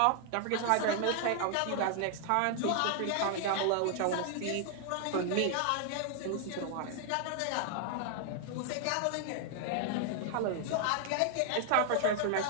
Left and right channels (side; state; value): both; different; correlation 0.00